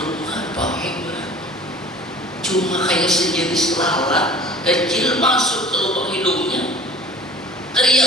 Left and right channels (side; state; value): both; normal; correlation 0.45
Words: apa cuma kayak sejenis lalat kecil masuk ke lubang hidungnya,